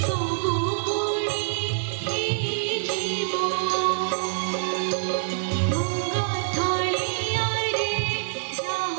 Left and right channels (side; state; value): left; silent; 61 dB below the other